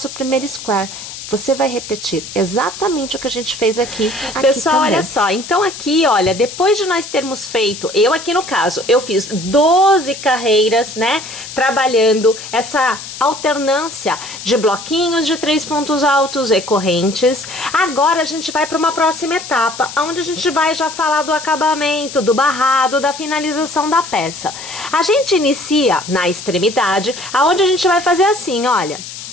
primeiro square. você vai repetir exatamente o que a gente fez aqui. Pessoal, também. olha só, então aqui, olha, depois de nós termos feito, eu aqui no caso, eu fiz 12 carreiras, né, trabalhando essa alternância de bloquinhos de 3 pontos altos e correntes. Agora a gente vai para uma próxima etapa, onde a gente vai já falar do acabamento, do barrado, da finalização da peça. A gente inicia na extremidade, aonde a gente vai fazer assim, olha.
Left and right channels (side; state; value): left; noise; hiss, 11 dB below the sound